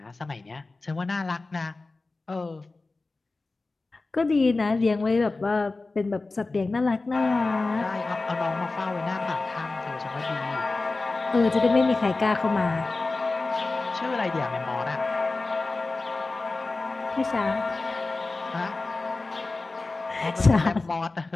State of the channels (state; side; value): quieter; right; 3.4 dB